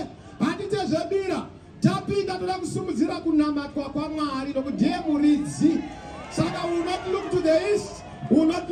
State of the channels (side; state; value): both; identical; correlation 1.00